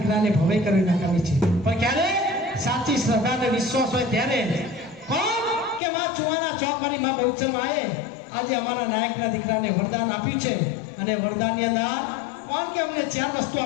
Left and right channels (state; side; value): drops out; right; at 5.8 s